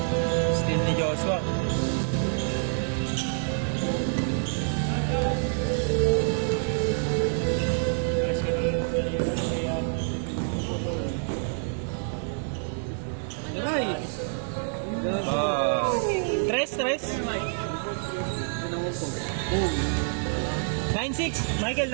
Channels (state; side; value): silent; left; 60 dB below the other